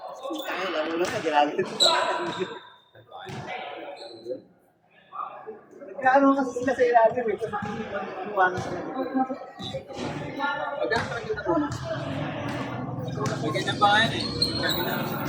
Ay, lalo na ka, ginagin ito. Nagkaano kasi sila sa ilalim eh. Kasi hindi ko iwanan sa Pag ang talaga na po. May ganyan pa ngayon eh. Kami na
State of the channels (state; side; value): identical; both; correlation 1.00